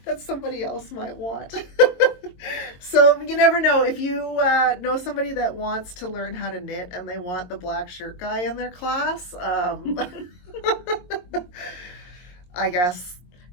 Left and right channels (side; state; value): right; late; 22 ms